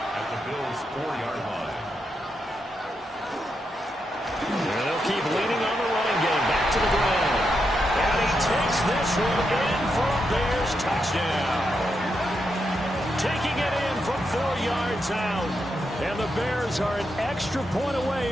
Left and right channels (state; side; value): normal; both; correlation 0.84